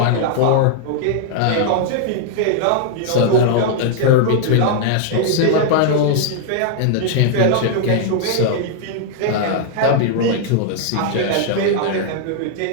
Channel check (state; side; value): different; both; correlation -0.01